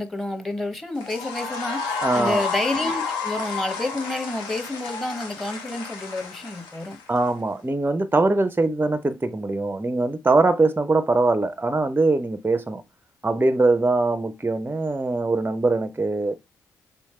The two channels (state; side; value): normal; both; correlation 0.85